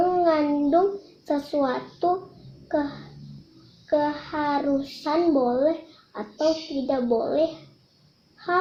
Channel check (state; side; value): identical; both; correlation 1.00